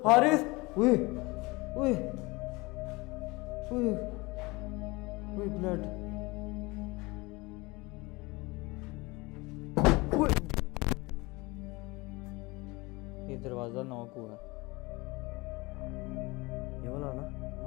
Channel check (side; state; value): right; quieter; 23.9 dB